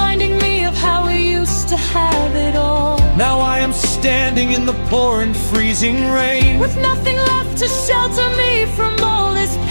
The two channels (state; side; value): inverted; both; correlation -1.00